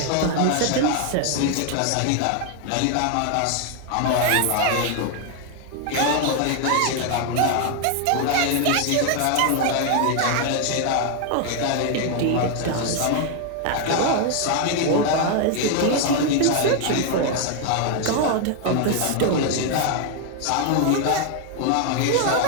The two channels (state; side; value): different; both; correlation 0.00